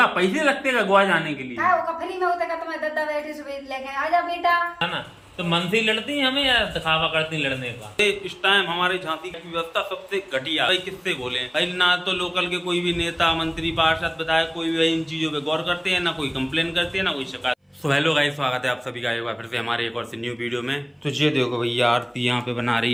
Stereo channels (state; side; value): identical; both; correlation 1.00